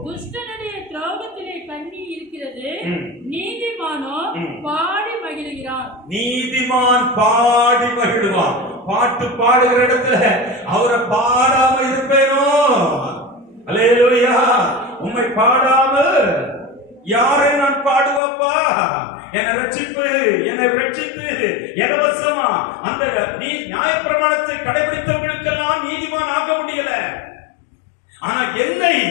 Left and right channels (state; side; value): drops out; right; at 18.2 s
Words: துஷ்டனுடைய திரோகத்திலே கண்ணி இருக்கிறது, நீதிமானோ பாடி மகிழுகிறான். நீதிமான் பாடி மகிழுவான். பாட்டு பாடுகிற இடத்துல அவரை பாடாம இருப்பேனோ? அல்லேலூயா. உம்மை பாடாமல் யாரை நான் பாடுவப்பா? என்னை ரட்சிப்பு, என்னை ரட்சித்து இலவசமா அந்த நீ நியாயப்பிரமாணத்தை கடைபிடித்தவர்களுக்கெல்லாம் நீதிமான் ஆக முடியல. ஆனா என்னை